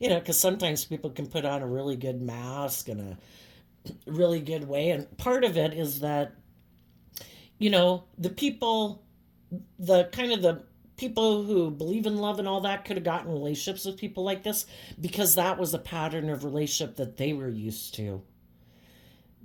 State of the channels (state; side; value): identical; both; correlation 1.00